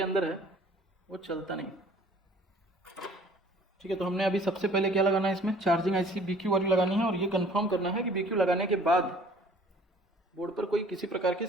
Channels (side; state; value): both; normal; correlation 0.53